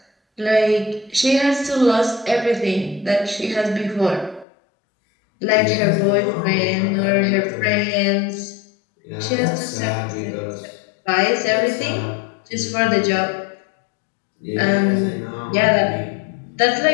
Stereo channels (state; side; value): drops out; right; at 4.5 s